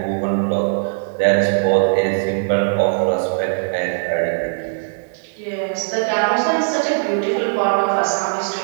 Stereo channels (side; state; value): left; silent; 56 dB below the other